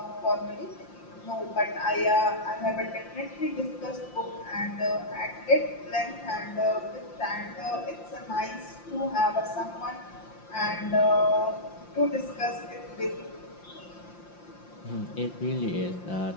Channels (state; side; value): late; right; 5.7 ms